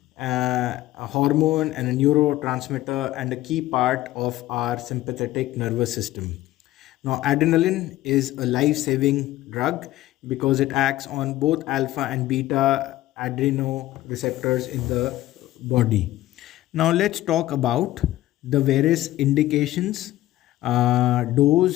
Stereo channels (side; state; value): right; quieter; 15.5 dB